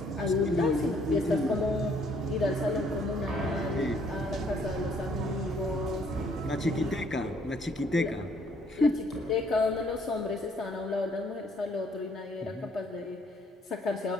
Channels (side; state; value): both; normal; correlation 0.65